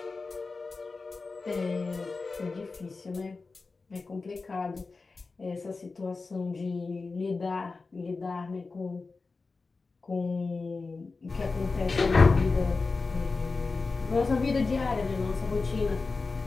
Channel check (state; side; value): quieter; right; 4.0 dB